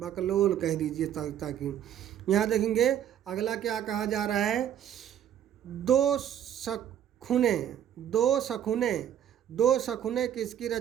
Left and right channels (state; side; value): quieter; left; 10.1 dB